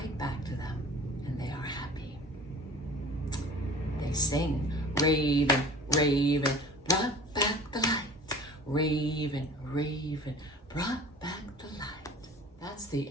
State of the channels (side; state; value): both; normal; correlation 0.44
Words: back to them. They are happy. They sing, Raven, Raven, brought back the light. Raven, Raven, brought back the light. That's the